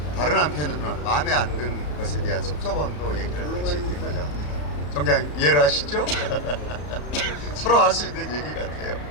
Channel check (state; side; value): late; right; 34 ms